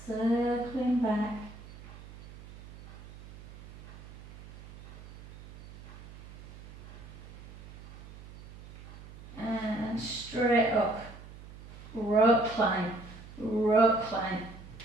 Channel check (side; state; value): right; noise; hum, 16 dB below the sound